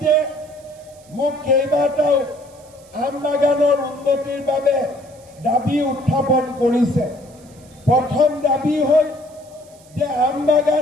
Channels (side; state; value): right; noise; hiss, 27 dB below the sound